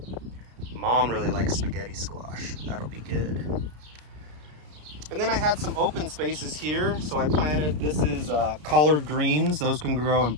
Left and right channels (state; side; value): late; left; 33 ms